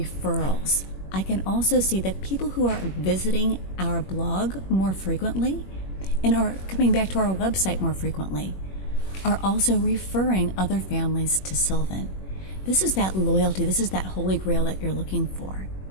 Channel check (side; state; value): right; late; 21 ms